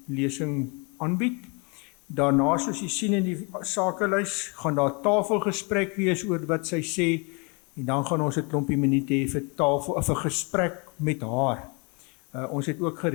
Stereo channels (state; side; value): quieter; right; 32.3 dB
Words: lesing aanbied. Daarna, soos jy sien in die sakelys, gaan daar tafelgesprek wees oor wat sy sê, en dan gaan ons 'n klompie minute hê vir vir gesprek met haar. Ons het ook